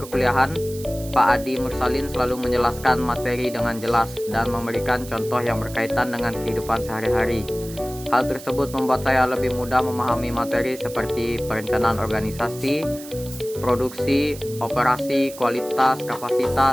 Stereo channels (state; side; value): noise; right; hiss, 16 dB below the sound